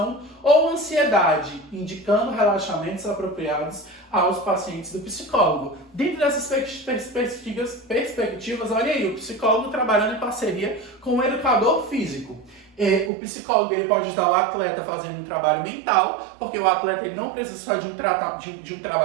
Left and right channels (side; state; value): left; drops out; at 13.1 s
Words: ou ansiedade, indicando relaxamentos apropriados aos pacientes do psicólogo. Dentro dessas perspectivas, olha aí, o psicólogo trabalhando em parceria com o educador físico. O psicólogo ele pode ajudar o atleta fazendo um trabalho mental, porque o atleta ele não precisa só de um